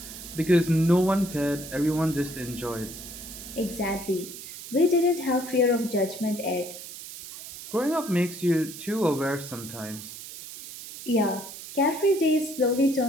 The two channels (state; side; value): noise; right; hiss, 12 dB below the sound